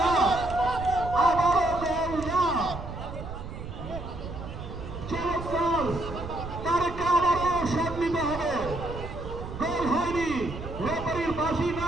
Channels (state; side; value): noise; right; rumble, 9 dB below the sound